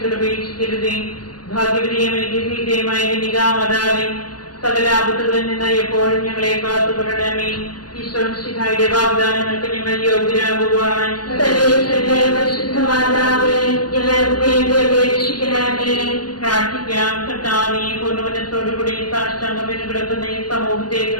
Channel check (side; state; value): right; late; 0.69 ms